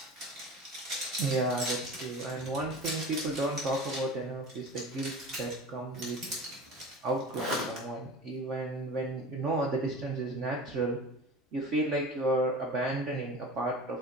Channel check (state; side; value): normal; both; correlation 0.36